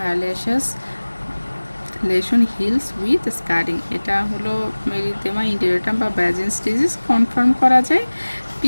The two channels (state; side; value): inverted; both; correlation -1.00